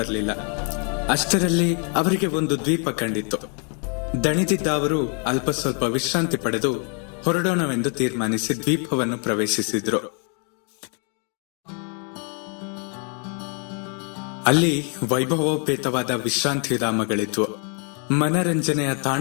ಅಷ್ಟರಲ್ಲಿ ಅವರಿಗೆ ಒಂದು ದ್ವೀಪ ಕಂಡಿತ್ತು. ದಣಿದಿದ್ದ ಅವರು ಅಲ್ಪ ಸ್ವಲ್ಪ ವಿಶ್ರಾಂತಿ ಪಡೆದು ಹೊರಡೋಣವೆಂದು ತೀರ್ಮಾನಿಸಿ ದ್ವೀಪವನ್ನು ಪ್ರವೇಶಿಸಿದ್ರು. ಅಲ್ಲಿ ವೈಭವೋಪೇತವಾದ ವಿಶ್ರಾಂತಿ ಧಾಮಗಳಿದ್ವು. ಮನರಂಜನೆಯ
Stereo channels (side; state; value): right; quieter; 39.7 dB